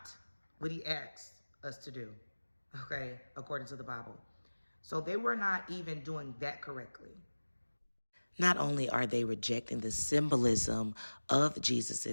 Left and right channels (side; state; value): both; inverted; correlation -1.00